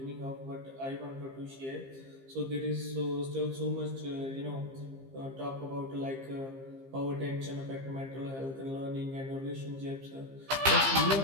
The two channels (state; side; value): late; left; 15 ms